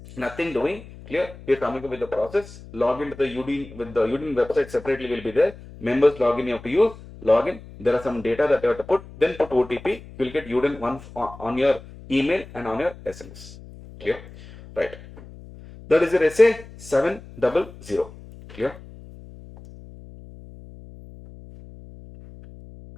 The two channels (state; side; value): noise; left; hum, 18 dB below the sound